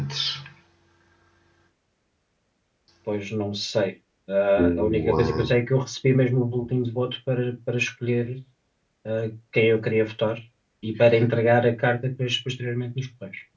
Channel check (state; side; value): identical; both; correlation 1.00